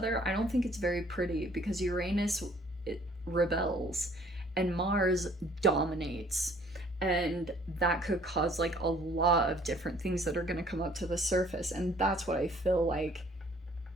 I don't think it's very pretty, because Uranus, it rebels and Mars dominates. And that could cause like a lot of different things that are going to come up to the surface. And that's what I feel like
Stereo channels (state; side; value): normal; both; correlation 0.58